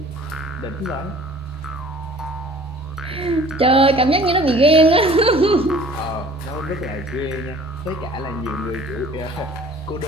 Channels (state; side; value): normal; both; correlation 0.50